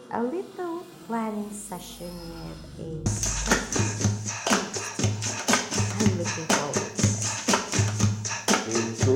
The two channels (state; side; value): identical; both; correlation 1.00